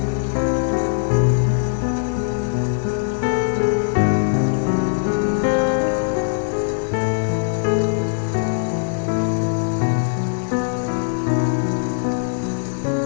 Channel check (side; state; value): right; silent; 55 dB below the other